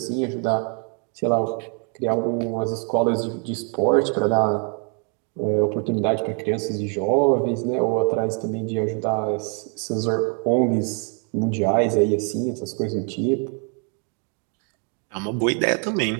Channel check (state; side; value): quieter; left; 38.9 dB